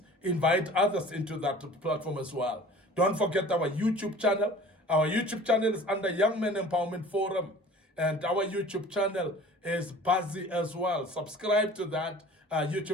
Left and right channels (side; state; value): both; normal; correlation 0.45